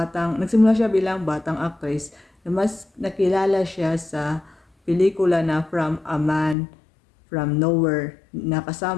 nagsimula siya bilang batang actress na mas nakilala siya sa pelikula na From a Man From Nowhere na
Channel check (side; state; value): right; drops out; at 6.6 s